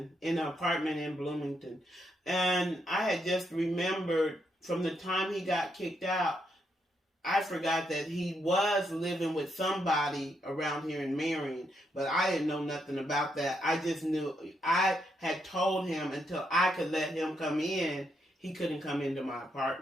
in an apartment in Bloomington. And I had just remembered from the time he got kicked out, I forgot that he was living with somebody around here in Marion, but I didn't know nothing about that. I just knew I had told him until I could let him come in, he couldn't come into my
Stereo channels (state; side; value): normal; both; correlation 0.79